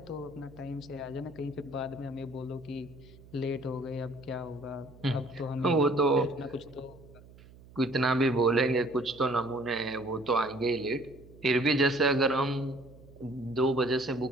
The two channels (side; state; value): right; noise; hum, 22 dB below the sound